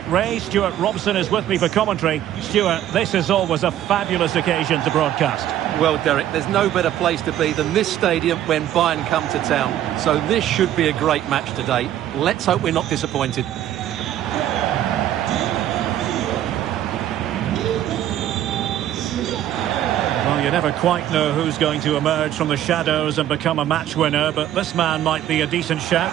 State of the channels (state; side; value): quieter; left; 11.9 dB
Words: Ray. Stuart Robson is with me for commentary. Stuart, this is always a fabulous occasion to broadcast. Well, Derek, there's no better place to be than this stadium when Bayern come to town. So this should be a great match today. Let's hope we're not disappointed. You never quite know who's going to emerge from the shadows and become a match winner, but this man might be a decent shout.